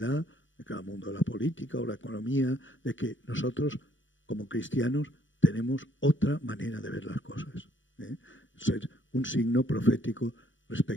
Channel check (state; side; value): late; right; 0.56 ms